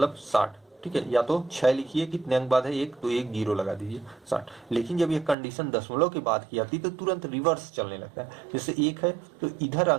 60, ठीक है। या तो 6 लिखिए, कितने अंक बाद है 1, तो 1 जीरो लगा दीजिए 60। लेकिन जब ये कंडीशन दशमलव के बाद की आती है तो तुरंत रिवर्स चलने लगता है। जैसे 1 है तो इधर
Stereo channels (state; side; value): drops out; left; at 5.4 s